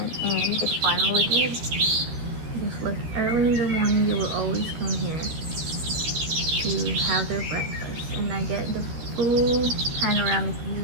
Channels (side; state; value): left; late; 13 ms